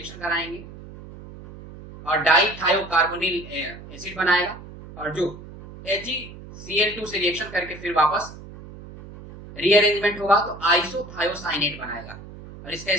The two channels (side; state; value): right; noise; hum, 16 dB below the sound